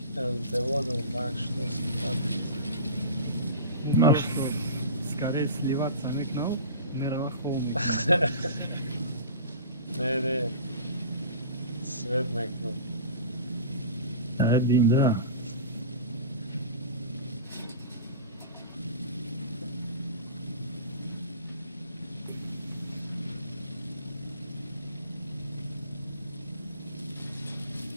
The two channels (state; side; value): inverted; both; correlation -0.34